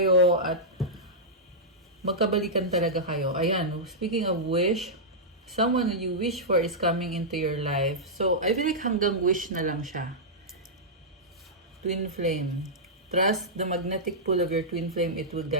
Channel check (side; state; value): both; normal; correlation -0.11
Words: at magkabalikan talaga kayo. Ayan, speaking of wish, someone that you wish for is coming into your life. So, I feel like hanggang wish na lang siya. Twin flame. Trust the magnetic pull of your twin flame. It will